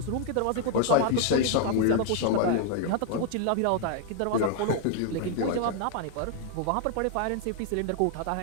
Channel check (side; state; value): both; different; correlation 0.00